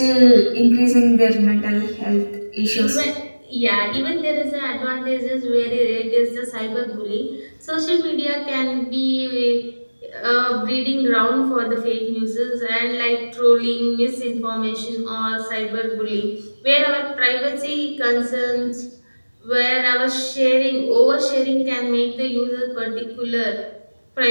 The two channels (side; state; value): both; inverted; correlation -1.00